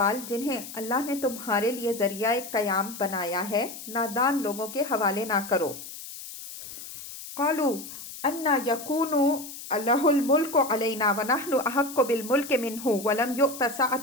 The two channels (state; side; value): noise; left; hiss, 12 dB below the sound